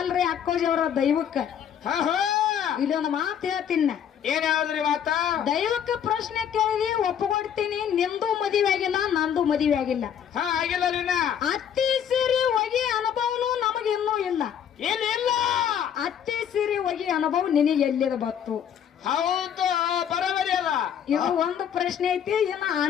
ಅಕ್ಕೋಜವರ ದೈವಕ್ಕ. ಇಲ್ಲೊಂದು ಮಾತು ಹೇಳ್ತೀನಿ. ಏನ್ ಯಾವ್ದ್ರಿ ಮಾತ? ದೈವಕ್ಕ ಪ್ರಶ್ನೆ ಕೇಳಿದಿ ಒಪ್ಪಗೊಡ್ತೀನಿ, ನಿಂದು ಮದುವೆ ಆಗಿಲ್ಲ, ನಂದು ಮದುವೆ ಆಗಿಲ್ಲ. ಆಗಿಲ್ಲ. ಅತ್ತಿ ಸೀರೆ ಒಗಿ ಅನುಭವನು ನಮಗೆ ಇನ್ನೂ ಇಲ್ಲ. ಇಲ್ಲ ಅತ್ತಿ ಸೀರೆ ಒಗಿ ಅನುಭವ ನಿನಗೆ ಎಲ್ಲಿದ ಬತ್ತು? ಹೌದು, ಬರೋಬರಿ ಅದ. ಇದು ಒಂದು ಪ್ರಶ್ನೆ ಐತಿ. ಇನ್ನು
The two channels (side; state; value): right; quieter; 8.8 dB